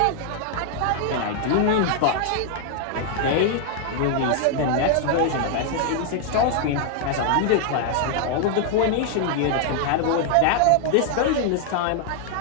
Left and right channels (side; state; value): both; different; correlation 0.00